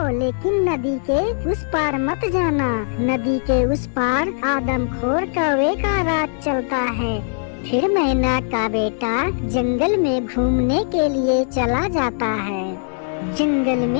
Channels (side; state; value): right; silent; 61 dB below the other